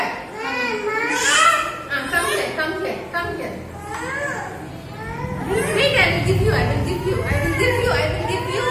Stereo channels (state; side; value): identical; both; correlation 1.00